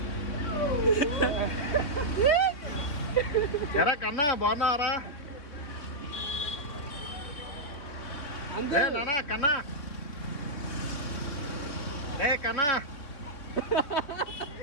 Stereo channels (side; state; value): right; late; 3.5 ms